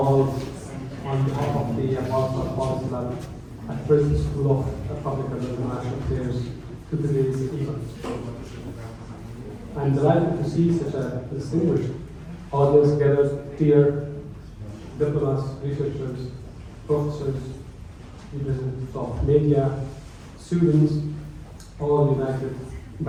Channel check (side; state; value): both; identical; correlation 1.00